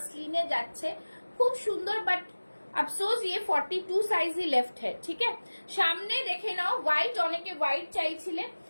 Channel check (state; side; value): inverted; both; correlation -1.00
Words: যাচ্ছে, খুব সুন্দর। বাট अफसोस ये 42 সাইজ ही लेफ्ट है। ठीक है, সামনে দেখে নাও হোয়াইট, অনেকে হোয়াইট চাইছিলে।